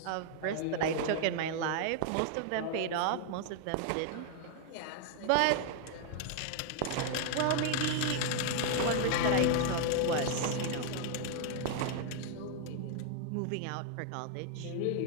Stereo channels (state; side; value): different; both; correlation 0.00